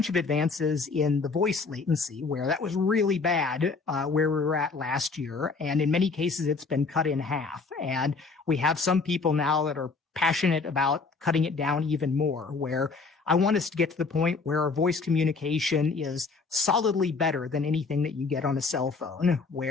of advances in the voice latency where that was really bad where we were at last year. And in many cases, it's been cut in half. And we have some people now that are passionate about cutting it down even more, where I want us to get to the point where our voice communication is solidly better than anything that you get on a cell phone,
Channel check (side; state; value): right; quieter; 4.4 dB